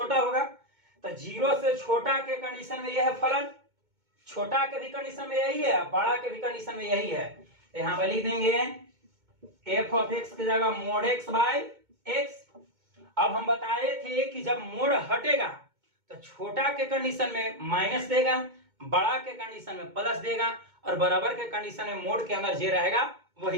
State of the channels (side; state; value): left; late; 2.2 ms